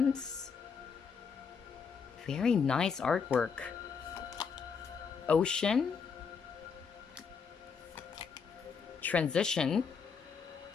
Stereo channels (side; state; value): right; quieter; 5.9 dB